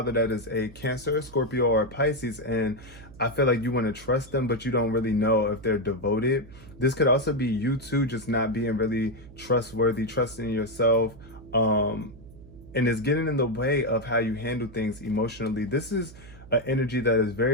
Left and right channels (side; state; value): right; noise; hum, 19 dB below the sound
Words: that is a Cancer, a Scorpio, or a Pisces, and I feel like you want to trust them, but you don't really know if they're devoted. This could also be you too, just not being really trustworthy, trusting yourself. And it's getting in the way of how you handle things emotionally. This is an energy that is